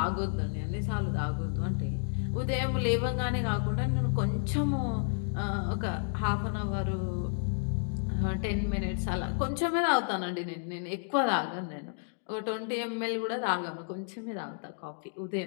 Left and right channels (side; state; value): right; silent; digital silence